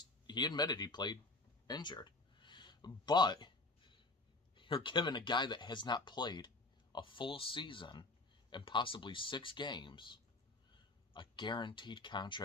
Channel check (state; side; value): quieter; right; 3.2 dB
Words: admitted he played injured. But you're giving a guy that has not played a full season and possibly 6 games a guaranteed